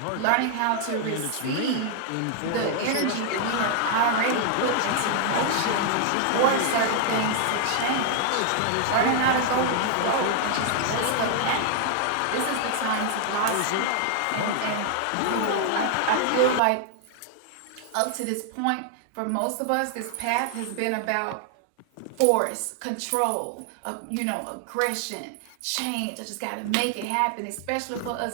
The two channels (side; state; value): both; different; correlation 0.00